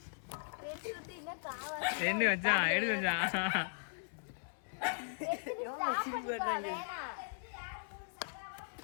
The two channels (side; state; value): right; silent; digital silence